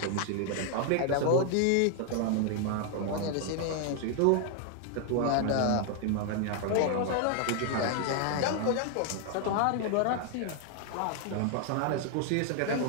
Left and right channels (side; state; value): both; different; correlation 0.00